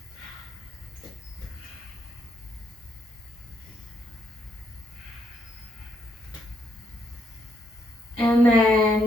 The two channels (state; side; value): normal; both; correlation 0.75